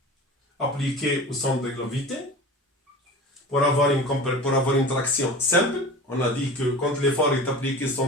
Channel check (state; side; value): normal; both; correlation 0.35